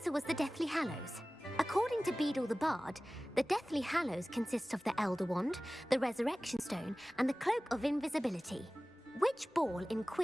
was the Deathly Hallows. According to Beadle the Bard, the Deathly Hallows consist of the Elder Wand, the Resurrection Stone, and the Cloak of Invisibility. Which ball in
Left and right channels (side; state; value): both; normal; correlation 0.98